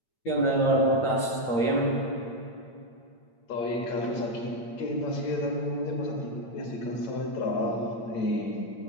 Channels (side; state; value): right; late; 8.8 ms